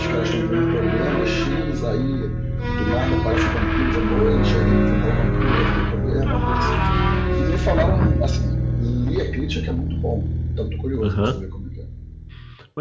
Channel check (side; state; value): both; identical; correlation 1.00